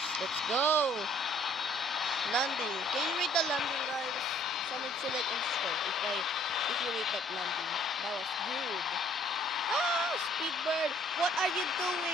Let's go. Landing. Can you rate the landing, guys? Someone select and start if you rate that landing. That was good. Ah, Speedbird, what are you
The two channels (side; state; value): both; normal; correlation 0.60